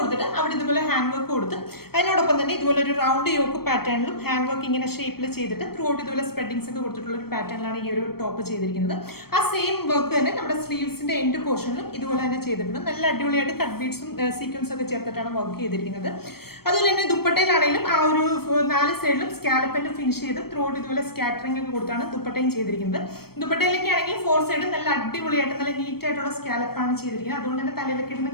അവിടെ ഇതുപോലെ ഹാൻഡ് വർക്ക് കൊടുത്ത് അതിനോടൊപ്പം തന്നെ ഇതുപോലെ ഒരു റൗണ്ട് യോക്ക് പാറ്റേണിലും ഹാൻഡ് വർക്ക് ഇങ്ങനെ ഷേപ്പിൽ ചെയ്തിട്ട് ത്രൂ ഔട്ട് ഇതുപോലെ സ്പ്രെഡിങ്സ് ഒക്കെ കൊടുത്തിട്ടുള്ള ഒരു പാറ്റേണിലാണ് ഈ ഒരു ടോപ്പ് ചെയ്തിരിക്കുന്നത്. ആ സെയിം വർക്ക് തന്നെ നമ്മുടെ സ്ലീവ്സിന്റെ എൻഡ് പോർഷനിലും ഇതുപോലെ തന്നെ ചെയ്തിട്ടുണ്ട്. നല്ല അടിപൊളിയായിട്ട് കട്ട് ബീഡ്സും സീക്വൻസ് ഒക്കെ ചേർത്തിട്ടാണ് വർക്ക് ചെയ്തിരിക്കുന്നത്. അതുപോലെ തന്നെ ദുപ്പട്ടയിലാണെങ്കിലും ആ ഒരു 4 സൈഡിലും സ്കാലപ്പിന്റെ ഫിനിഷ് ചെയ്ത് ത്രൂ ഔട്ട് ഇതുപോലെ സ്കാറ്ററിംഗ് ഒക്കെ കൊടുത്താണ് ദുപ്പട്ടയും ചെയ്തിരിക്കുന്നത്. ദുപ്പട്ടയിലേക്ക് ആണെങ്കിൽ 4 സൈഡും നല്ല അടിപൊളിയായിട്ട് നല്ല നീറ്റ് ആയിട്ടുള്ള സ്കാലപ്പാണ് ചെയ്തിരിക്കുന്നത്. അതുകൊണ്ട് തന്നെ തലയിലൊക്കെ ഇടുന്ന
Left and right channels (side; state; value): right; late; 0.95 ms